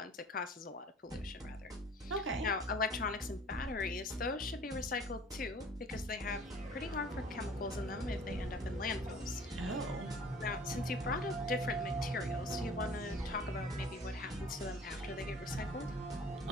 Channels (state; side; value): normal; both; correlation 0.49